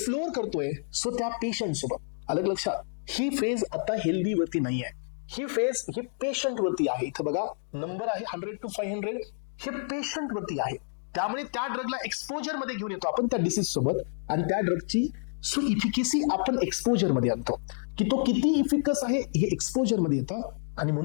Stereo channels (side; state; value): right; silent; digital silence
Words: करतोय, सो त्या पेशंट सोबत. अलग लक्षात, ही फेज आता हेल्दी वरती नाही आहे, ही फेज ही पेशंट वरती आहे. इथं बघा नंबर आहे 100 to 500, हे पेशंट वरती आहे. त्यामुळे त्या ड्रगला एक्सपोजर मध्ये घेऊन येतो आपण त्या डिसीज सोबत, आणि त्या ड्रगची सो इफिकेसी आपण एक्सपोजर मध्ये आणतो की तो किती इफिकस आहे हे एक्सपोजर मध्ये येतं. आणि